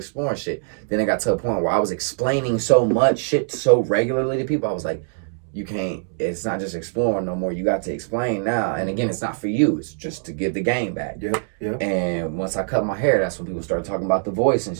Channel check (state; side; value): silent; left; digital silence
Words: shit. Then it got to a point where I was explaining so much shit so regularly to people. I was like, you can't, it's not just exploring no more. You got to explain now. And again, it's not for you. It's just to give the game back. Yep. And once I cut my hair, that's when people started talking about the voice and